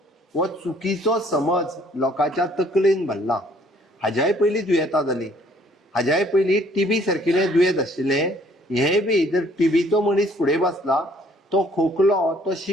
हो चुकीचो समज लोकांच्या तकलेन भरला. हाज्याय पयलीं दुयेंतां जाली, हाज्याय पयलीं टीबी सारकिले दुयेंत आशिल्ले. हे बी जर टीबीचो मनीस फुडें बसला, तो खोकलो, तो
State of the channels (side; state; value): both; normal; correlation 0.61